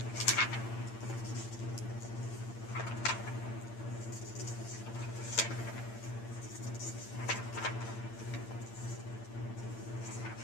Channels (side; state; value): right; late; 8.8 ms